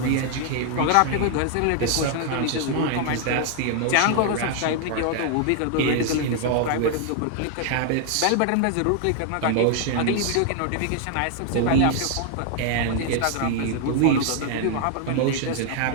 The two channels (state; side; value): different; both; correlation 0.00